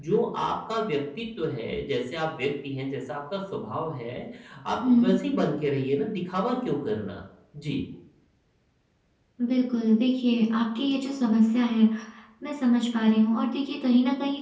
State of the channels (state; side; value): identical; both; correlation 1.00